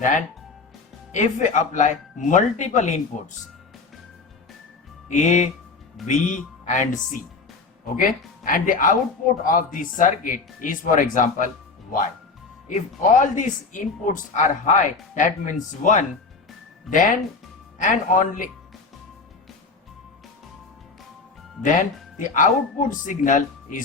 if we apply multiple inputs A, B and C, okay, and the output of the circuit is, for example, Y. If all these inputs are high, that means 1, then the output signal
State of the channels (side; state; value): right; quieter; 4.3 dB